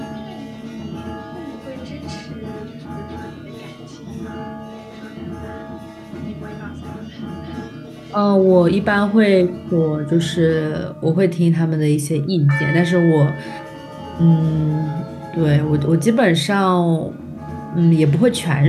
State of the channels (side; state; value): both; identical; correlation 1.00